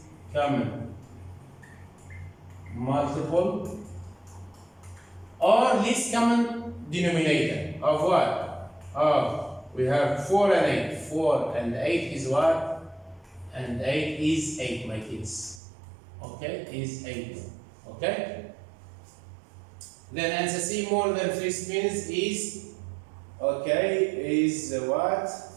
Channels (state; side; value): drops out; left; at 15.6 s